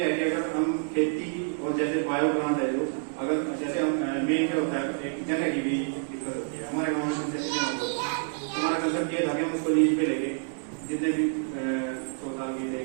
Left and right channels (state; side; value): silent; left; 59 dB below the other